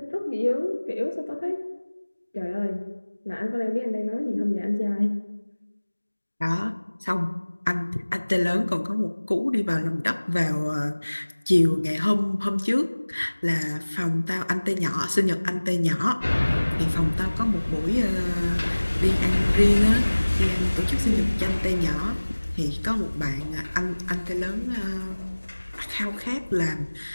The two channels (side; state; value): both; inverted; correlation -1.00